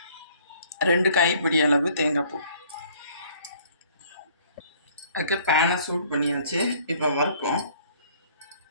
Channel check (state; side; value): inverted; both; correlation -0.58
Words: 2 கைப்பிடி அளவு தேங்காய் பூ. அதுக்கு பேனை சூட் பண்ணியாச்சு. இப்போ வறுப்போம்.